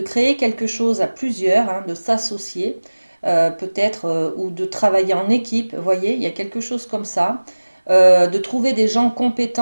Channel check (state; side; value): inverted; both; correlation -1.00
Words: créer quelque chose à plusieurs, hein, de s'associer, peut-être, ou de travailler en équipe. Vous voyez, il y a quelque chose comme ça. De trouver des gens